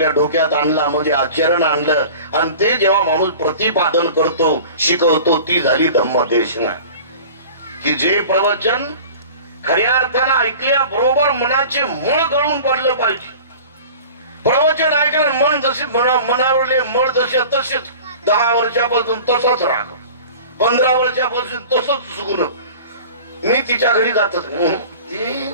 डोक्यात आणला, म्हणजे आचरण आणलं, आणि ते जेव्हा माणूस प्रतिपादन करतो, शिकवतो, ती झाली धम्मदेशना. की जे प्रवचन खऱ्या अर्थानं ऐकल्या बरोबर मनाचे मळ गळून पडलं पाहिजे. प्रवचन ऐकलं मन जसे मनावरले मळ जसे तसेच 10 वर्षापासून तसाच राग, 15 वर्षापासून तसंच सुगुण. मी तिच्या घरी जातच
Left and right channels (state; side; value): inverted; both; correlation -0.40